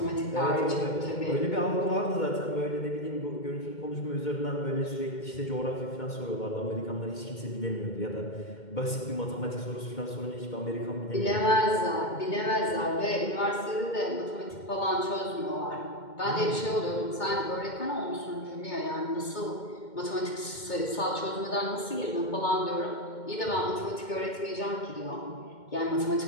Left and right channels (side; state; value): right; late; 2.2 ms